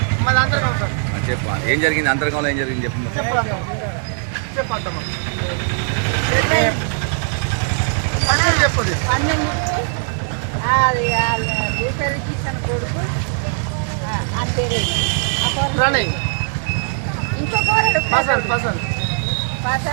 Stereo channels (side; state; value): left; silent; 56 dB below the other